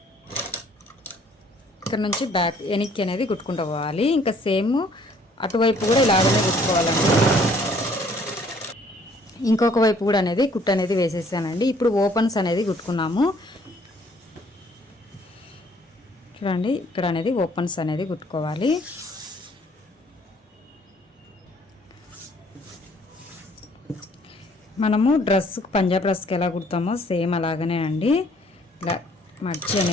ఇక్కడ నుంచి బ్యాక్ వెనక్కి అనేది కుట్టుకుంటూ పోవాలి. ఇంకా సేమ్ అటువైపు కూడా ఇలాగనే కుట్టుకోవాలండి. ఇంకొక వైపు కూడా అనేది కుట్టు అనేది వేసేసానండి. ఇప్పుడు ఓపెన్స్ అనేది కుట్టుకున్నాము. చూడండి ఇక్కడ అనేది ఓపెన్స్ అనేది కుట్టుకోవాలి. మనము డ్రెస్కి పంజాబ్ డ్రెస్కి ఎలా కుడతామో సేమ్ అలాగనే అండి. ఇలా మర్చి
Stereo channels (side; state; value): both; normal; correlation 0.60